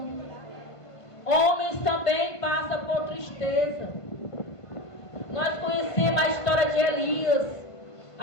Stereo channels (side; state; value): right; late; 1.5 ms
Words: Homens também passam por tristeza. Nós conhecemos a história de Elias,